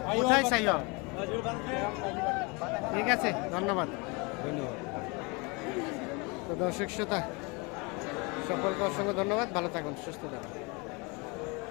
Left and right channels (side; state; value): right; quieter; 28.7 dB